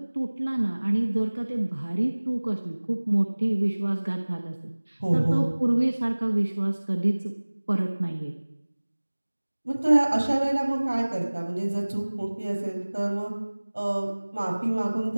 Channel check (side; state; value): both; inverted; correlation -1.00